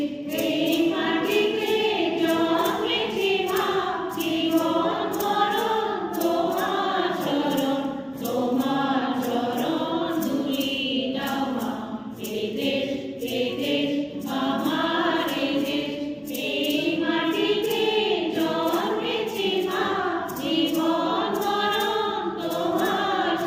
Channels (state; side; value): identical; both; correlation 1.00